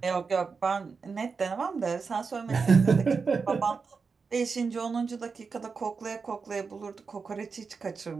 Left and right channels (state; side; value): quieter; left; 5.0 dB